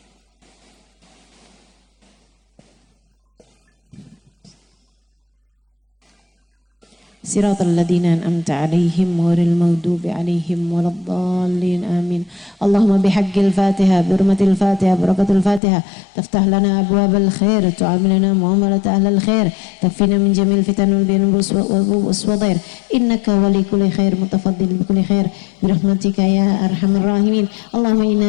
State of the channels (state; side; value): drops out; right; at 15.6 s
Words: Siratal ladzina an'amta 'alaihim ghairil maghdubi 'alaihim waladdallin amin. Allahumma bihaqqil Fatihah, bi hurmatil Fatihah, barakatul Fatihah, taftah lana abwabal khair, tu'amilana muamalat ahlil khair, takfina min jamil fitan wal bin waswadhir, innaka wali kulli khair mutafaddil bi kulli khair bi rahmatika ya arhamar rahimin. Allahumma